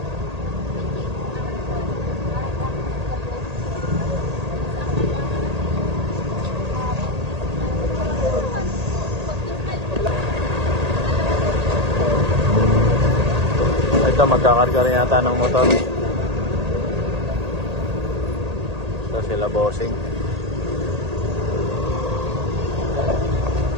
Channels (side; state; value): left; late; 1.8 ms